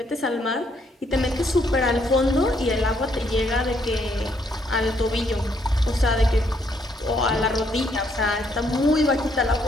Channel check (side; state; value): both; normal; correlation 0.71